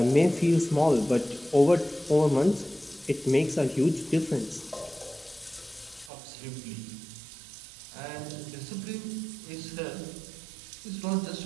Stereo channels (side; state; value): left; drops out; at 6.1 s